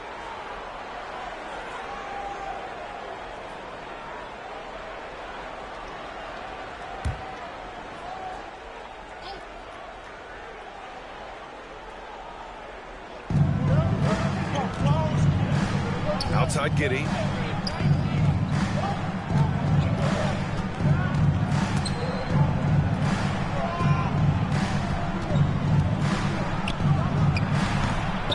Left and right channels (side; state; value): both; identical; correlation 1.00